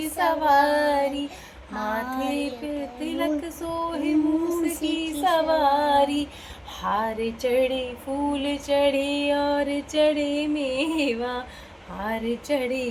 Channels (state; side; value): identical; both; correlation 1.00